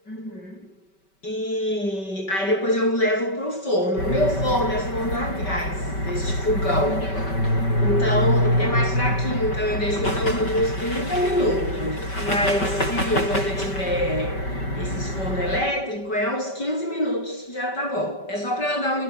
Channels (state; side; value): late; right; 5.2 ms